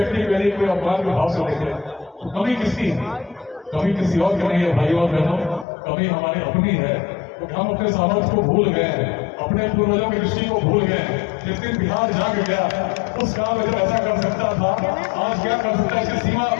के लिए कोई अपमान के भाव से देखे तो कमी किसकी है? कमी किसी और की नहीं है भाइयों और बहनों, कमी हमारी अपनी है। तो हम अपने सामर्थ्य को भूल गए हैं, अपने पूर्वजों की दृष्टि को भूल गए हैं। जिस दिन बिहार जाग गया, उस काल में जब ऐसा कर सकता था, आज क्या कर सकता है इसकी सीमा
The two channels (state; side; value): drops out; right; at 5.7 s